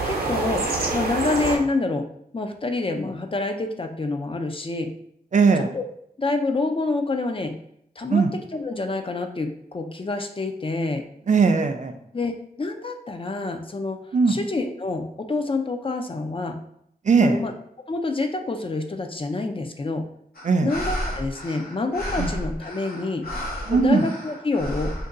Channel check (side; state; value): both; normal; correlation 0.68